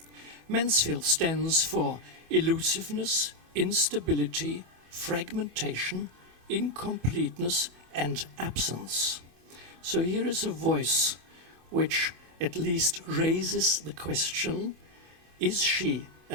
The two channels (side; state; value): left; late; 25 ms